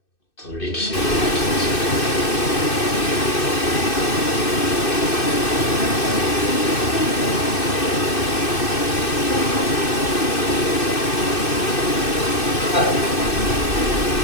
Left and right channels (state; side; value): late; right; 2.6 ms